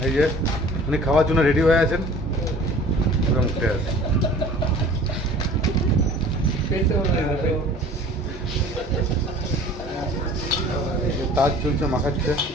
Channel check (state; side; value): normal; both; correlation 0.46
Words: এই যে উনি খাওয়ার জন্য রেডি হয়ে আছেন। উঠে আছে তাজ চলছে, মাখাচ্ছে।